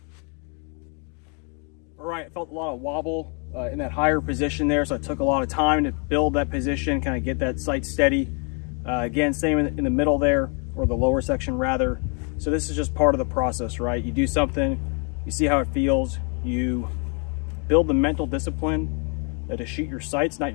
All right, I felt a lot of wobble in that higher position there, so it took a lot of time to build that position, kind of get that sight steady. Again, same in the middle there, or the lower section rather. So this is just part of the process, right? You do something, you see how it feels, you build the mental discipline to shoot your sights, not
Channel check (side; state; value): right; quieter; 36.8 dB